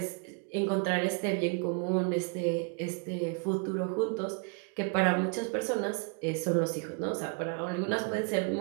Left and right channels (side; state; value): left; quieter; 36.5 dB